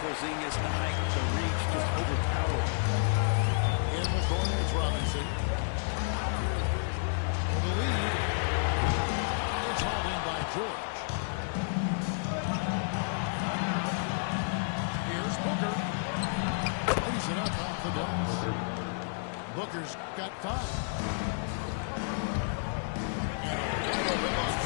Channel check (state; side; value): silent; right; 56 dB below the other